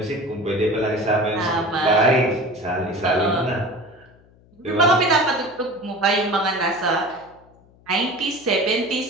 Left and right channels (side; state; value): left; noise; hum, 29 dB below the sound